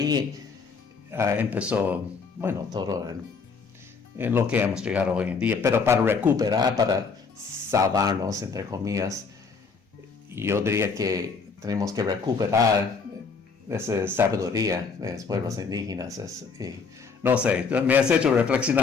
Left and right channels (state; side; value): quieter; right; 5.1 dB